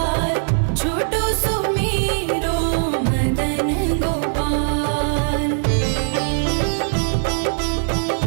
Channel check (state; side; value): silent; left; digital silence